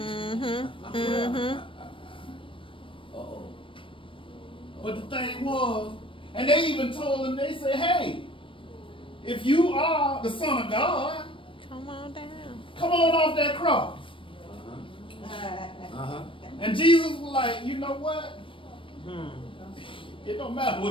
Uh-oh. But the thing was, and they even told him, they said, hey, if you are the Son of God, Come on down. come on off that cross. And Jesus was like, you know what? It don't matter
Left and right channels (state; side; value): late; right; 0.25 ms